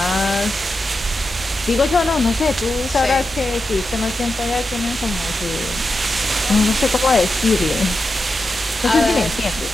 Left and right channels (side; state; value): both; normal; correlation 0.89